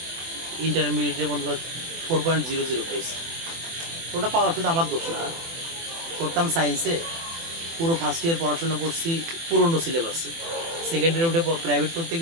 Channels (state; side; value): late; left; 24 ms